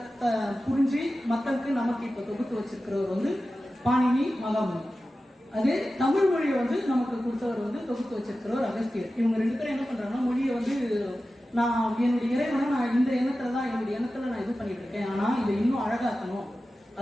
புரிஞ்சு மக்களுக்கு நமக்கு இப்ப தொகுத்து வச்சிருக்கிறவர் வந்து பாணினி மகாமுனி. அதே தமிழ் மொழியை வந்து நமக்கு கொடுத்தவர் வந்து தொகுத்து வச்சிருக்கிறவர் அகஸ்தியர். இவங்க ரெண்டு பேரும் என்ன பண்றாங்கன்னா, மொழியை வந்து நான் என்னுடைய இறைவனை நான் இந்த எண்ணத்துல தான் என்னுடைய எண்ணத்துல நான் இது பண்ணிட்டு இருக்கேன், ஆனா இதை இன்னும் அழகாக்கணும்,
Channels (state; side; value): normal; both; correlation 0.94